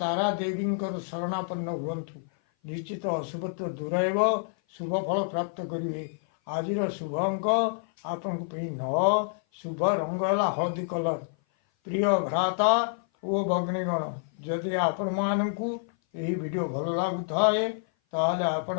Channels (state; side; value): silent; right; 56 dB below the other